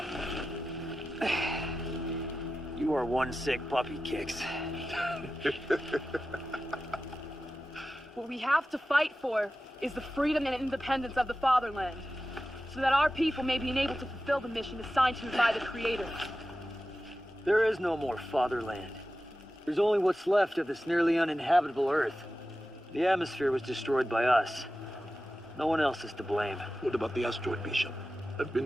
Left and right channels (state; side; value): normal; both; correlation 0.93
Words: You are one sick puppy, Kicks. What we have to fight for is the freedom and independence of the fatherland, so that our people may be enabled to fulfill the mission assigned to us by the Creator. There is no more fatherland. There's only what's left of this nearly uninhabitable Earth. The atmosphere was destroyed by us. No one else is to blame. What about the asteroid, Bishop? I've